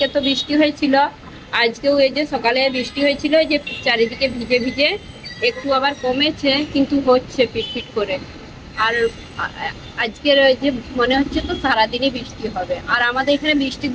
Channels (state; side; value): identical; both; correlation 1.00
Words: তো বৃষ্টি হয়েছিল আজকেও এই যে সকালে বৃষ্টি হয়েছিল যে চারিদিকে ভিজে ভিজে একটু আবার কমেছে কিন্তু হচ্ছে পিটপিট করে আর আজকের ওই যে মনে হচ্ছে তো সারাদিনই বৃষ্টি হবে আর আমাদের এখানে বৃষ্টি